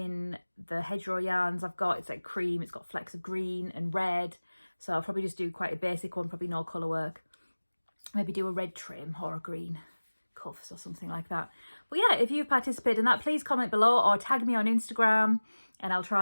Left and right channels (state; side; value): inverted; both; correlation -1.00